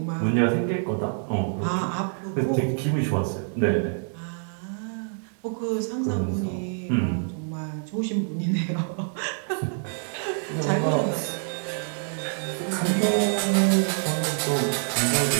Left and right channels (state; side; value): silent; left; 58 dB below the other